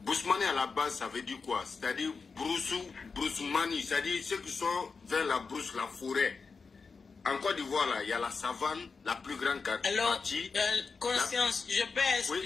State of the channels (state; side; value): quieter; right; 4.8 dB